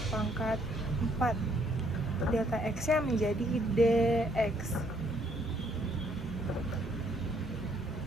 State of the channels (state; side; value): normal; both; correlation 0.68